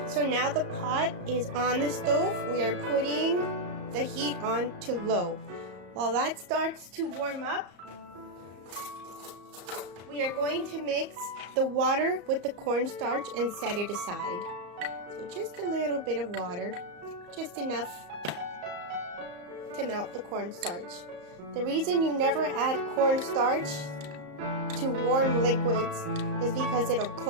so now the pot is on the stove. We are putting the heat on to low. While that starts to warm up, we are going to mix the water with the cornstarch and set it aside. So just a little bit of water, just enough to melt the cornstarch. The reason you never add cornstarch to warm liquids is because it'll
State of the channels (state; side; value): late; left; 34 ms